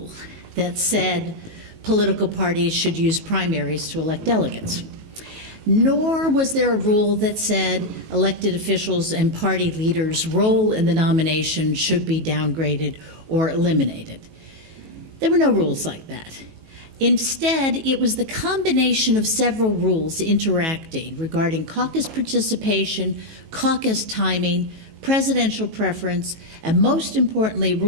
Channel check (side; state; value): left; late; 18 ms